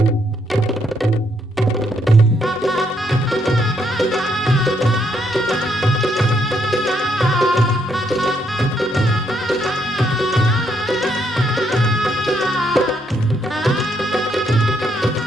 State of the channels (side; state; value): both; normal; correlation 0.74